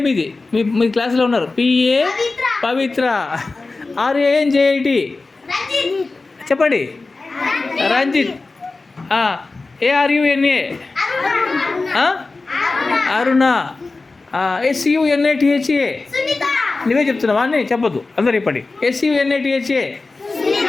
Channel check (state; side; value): quieter; right; 3.6 dB